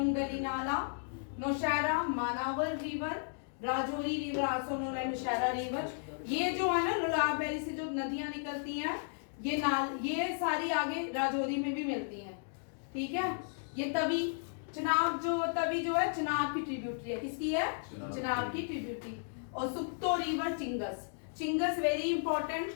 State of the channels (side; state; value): right; silent; digital silence